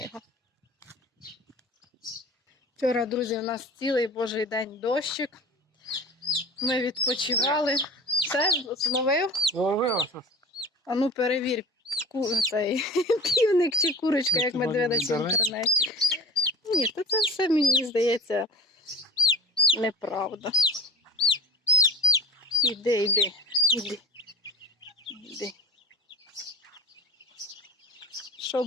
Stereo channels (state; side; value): normal; both; correlation 0.38